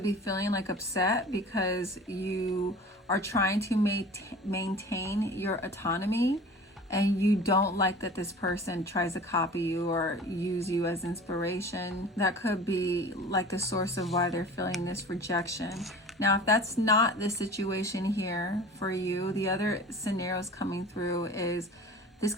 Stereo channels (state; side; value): normal; both; correlation 0.40